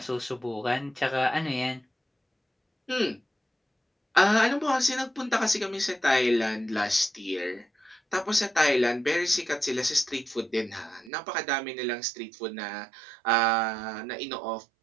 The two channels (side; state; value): left; drops out; at 11.1 s